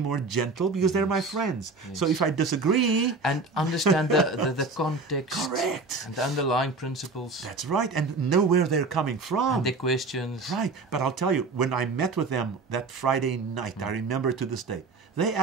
gentle because they're my friends. So if I disagree... And understand the context. Correct. And the underlying principles. That's right. And know where they're coming from. And their questions. Right. But I'll tell you, when I met with them that Friday night, I remember to this day, they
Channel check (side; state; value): left; quieter; 3.8 dB